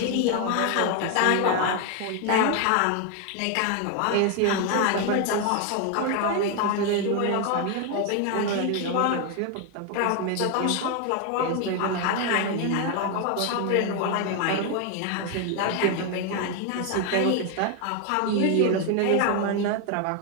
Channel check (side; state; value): both; different; correlation 0.01